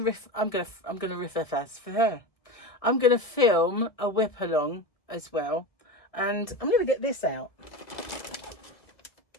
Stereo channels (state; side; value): late; right; 1.6 ms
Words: for her. I'm gonna film a whip along as well, and I'm gonna get this out.